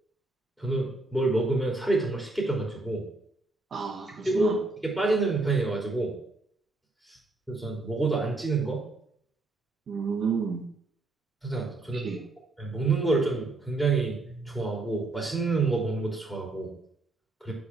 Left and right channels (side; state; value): left; quieter; 3.0 dB